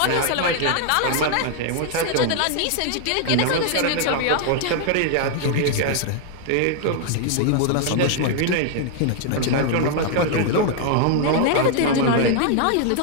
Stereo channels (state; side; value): different; both; correlation 0.00